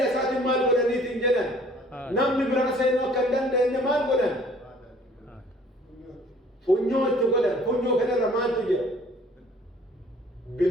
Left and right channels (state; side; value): normal; both; correlation 0.55